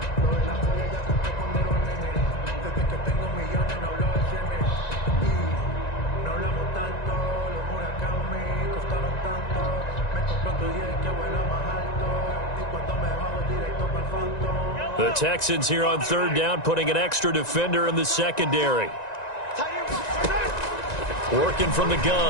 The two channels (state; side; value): late; right; 1.9 ms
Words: The Texans here on 3rd down, putting an extra defender in the secondary. Working from the